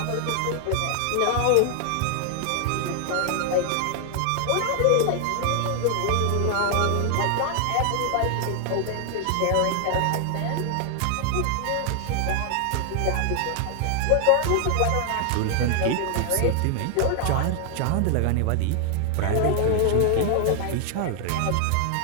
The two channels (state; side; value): different; both; correlation 0.00